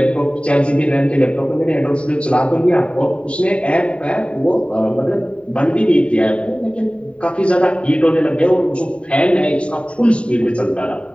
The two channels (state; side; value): late; right; 0.060 ms